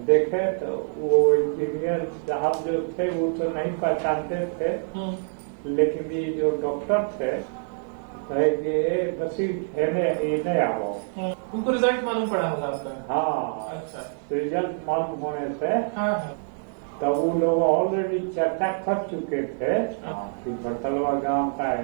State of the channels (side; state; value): left; silent; 61 dB below the other